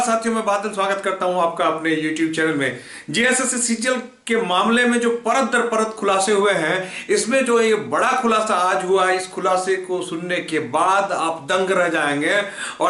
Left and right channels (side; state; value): both; identical; correlation 1.00